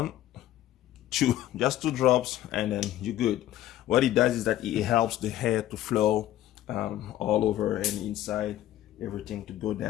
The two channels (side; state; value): right; quieter; 13.3 dB